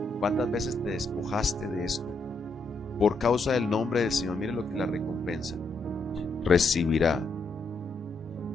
¿Cuántas veces te despojaste de esto? Por causa del nombre del Señor, mire lo que la recompensa. Recibirá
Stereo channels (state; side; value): quieter; right; 3.1 dB